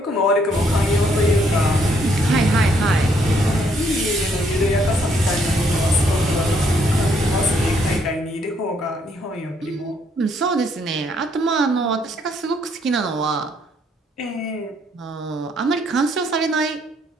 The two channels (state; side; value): normal; both; correlation 0.69